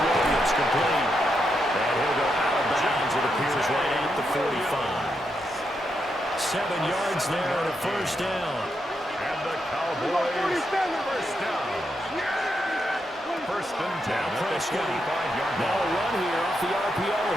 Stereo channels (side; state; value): both; normal; correlation 0.83